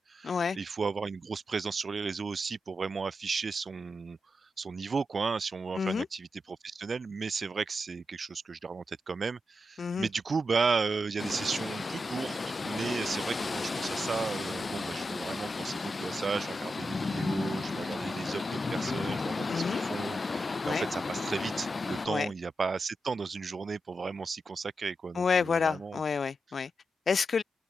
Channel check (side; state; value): both; normal; correlation 0.87